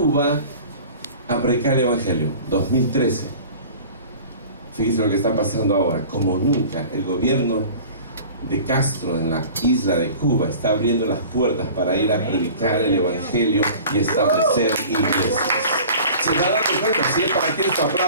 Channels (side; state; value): both; inverted; correlation -0.42